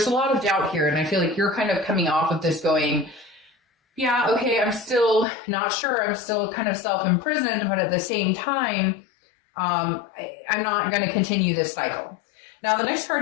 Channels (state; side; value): drops out; right; at 5.2 s